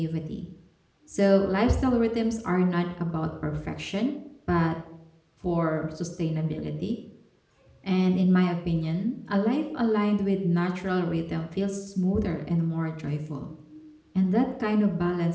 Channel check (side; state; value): both; identical; correlation 1.00